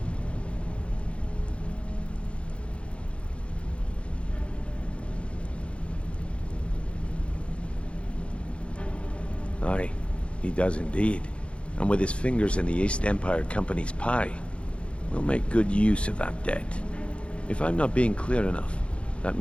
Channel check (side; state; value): right; late; 0.060 ms